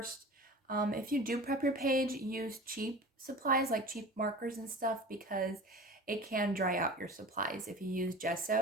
If you do prep your page, use cheap supplies like cheap markers and stuff because it can dry out your supplies if you use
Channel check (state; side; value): normal; both; correlation 0.36